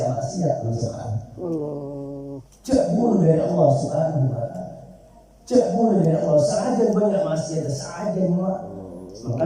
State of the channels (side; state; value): both; identical; correlation 1.00